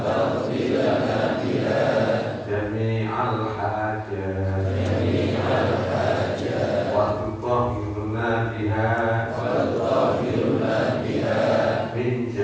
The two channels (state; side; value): identical; both; correlation 1.00